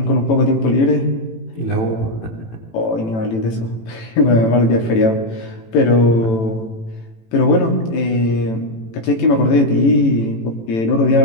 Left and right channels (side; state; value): right; late; 18 ms